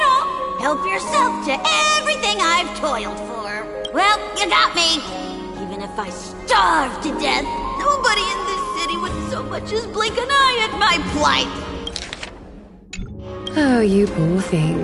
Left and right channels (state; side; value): identical; both; correlation 1.00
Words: all! Help yourself to everything I've toiled for. Well, you got me. Even if I starve to death, nobody in this city would so much as blink an eye at my plight. Oh, you poor